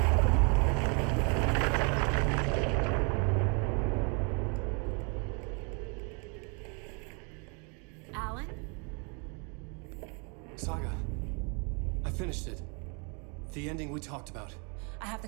Saga, I finished it. The ending we talked about. I have the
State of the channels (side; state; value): left; quieter; 35.3 dB